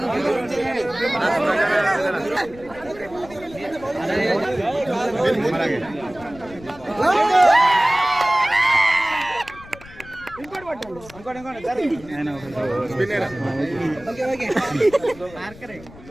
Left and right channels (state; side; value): noise; left; rumble, 20 dB below the sound